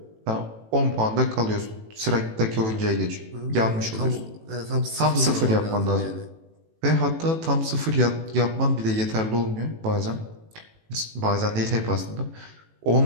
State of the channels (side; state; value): left; late; 18 ms